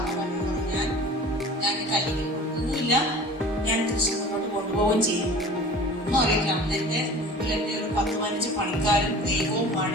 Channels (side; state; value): both; normal; correlation 0.42